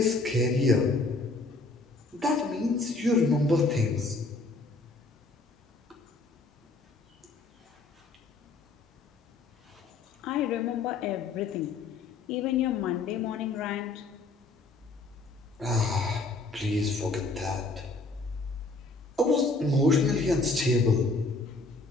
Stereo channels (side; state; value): right; quieter; 3.4 dB